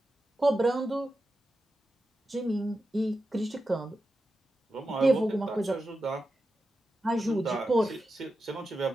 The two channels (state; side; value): normal; both; correlation 0.90